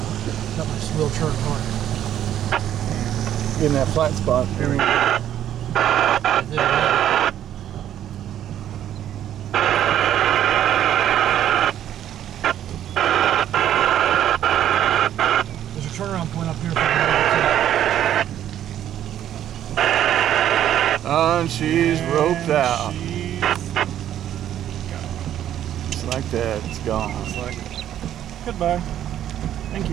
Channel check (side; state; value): left; quieter; 11.1 dB